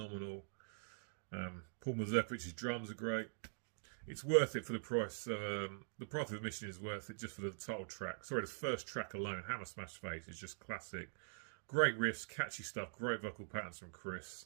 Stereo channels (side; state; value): left; silent; digital silence